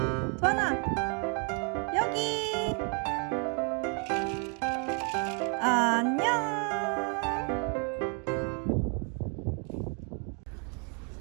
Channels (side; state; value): left; quieter; 38.6 dB